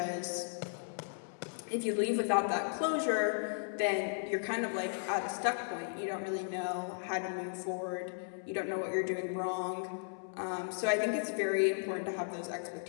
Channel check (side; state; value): right; silent; 54 dB below the other